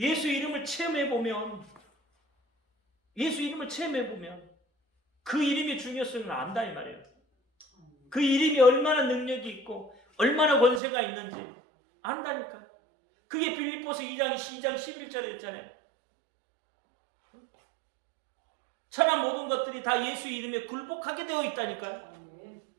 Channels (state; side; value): drops out; left; at 10.8 s